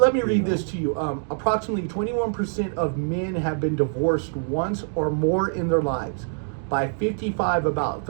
me read this to you. Approximately 21% of men have been divorced once or more in their lives. By 55, about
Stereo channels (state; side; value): silent; left; 62 dB below the other